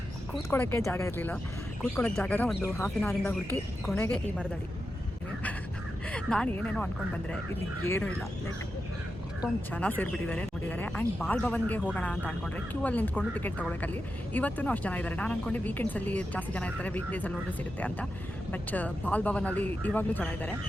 ಕೂತ್ಕೊಳ್ಳೋಕ್ಕೆ ಜಾಗ ಇರಲಿಲ್ಲ. ಕೂತ್ಕೊಳ್ಳೋಕ್ಕೆ ಜಾಗನ ಒಂದು ಹಾಫ್ ಆನ್ ಅವರಿಂದ ಹುಡುಕಿ ಕೊನೆಗೆ ಈ ಮರದಡಿ. ನಾನು ಏನೇನೋ ಅಂದ್ಕೊಂಡು ಬಂದರೆ ಇಲ್ಲಿ ಏನೂ ಇಲ್ಲ. ಲೈಕ್ ಅಷ್ಟೊಂದು ಜನ ಸೇರಿಬಿಟ್ಟಿದ್ದಾರೆ ನೋಡಿದ್ದಾರೆ. ಆ್ಯಂಡ್ ಬಾಲ್ ಭವನ್ಗೆ ಹೋಗೋಣ ಅಂತ ಅಂದ್ಕೊಂಡ್ರೆ ಕ್ಯೂ ಅಲ್ಲಿ ನಿಂತ್ಕೊಂಡು ಟಿಕೆಟ್ ತೊಗೊಳಕ್ಕಲ್ಲಿ ಇವತ್ತೂ ಅಷ್ಟು ಜನ ಇದ್ದಾರೆ. ನಾನು ಅಂದ್ಕೊಂಡೆ ವೀಕೆಂಡ್ಸಲ್ಲಿ ಜಾಸ್ತಿ ಜನ ಇರ್ತಾರೆ, ವೀಕ್ ಡೇಸಲ್ಲಿ ಹೋದರೆ ಸಿಗುತ್ತೆ ಅಂತ. ಬಟ್ ಬಾಲ್ ಭವನಲ್ಲಿ ಇವಾಗಲೂ ಜನ ಇದ್ದಾರೆ.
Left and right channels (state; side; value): normal; both; correlation 0.89